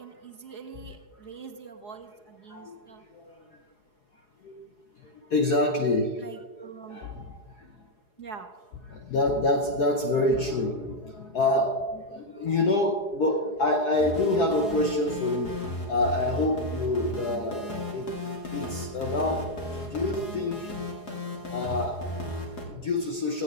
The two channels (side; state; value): right; late; 4.8 ms